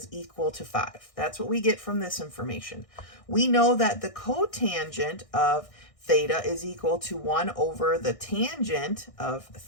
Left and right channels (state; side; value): late; right; 1.6 ms